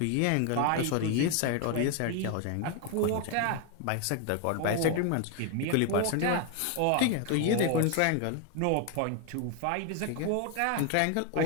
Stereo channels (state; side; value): different; both; correlation 0.01